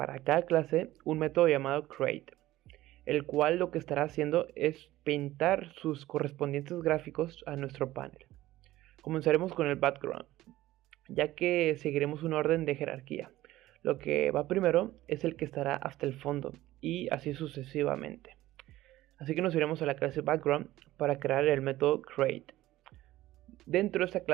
cada clase un método llamado Create, el cual lo que estará haciendo es pintar sus correspondientes gráficos a nuestro panel. Comenzaremos con el Background, ya que seguiremos un orden de jerarquía. Lo que va primero es el que estará hasta el fondo y así sucesivamente. Así que nos iremos a la clase Background para crear el método Create. Dentro de esta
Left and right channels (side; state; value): left; quieter; 16.0 dB